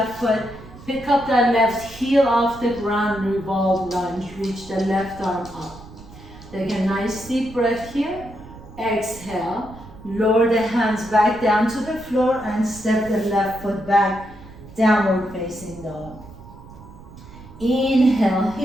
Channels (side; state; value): right; noise; rumble, 18 dB below the sound